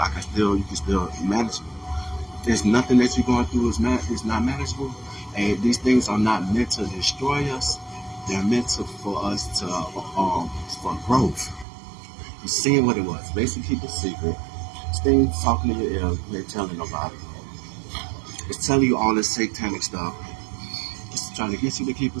you can still manage it. There's nothing that you're going through is not manageable, and these things are not meant to destroy us. They're meant for us to for growth. You seeing what it was? Basically, keep a secret. Things talking to your ear, they're telling nobody. It's telling you all this satanic stuff. It's trying to get you to keep a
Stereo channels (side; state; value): left; drops out; at 11.7 s